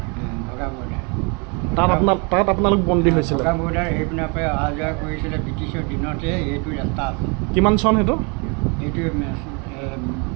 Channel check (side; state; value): left; quieter; 32.5 dB